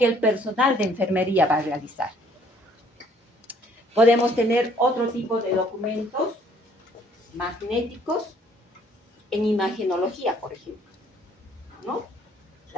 el personal de enfermería va a realizar. Podemos tener otro tipo de documentos magnéticos en imagenología, por ejemplo, ¿no?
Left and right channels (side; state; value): both; normal; correlation 0.61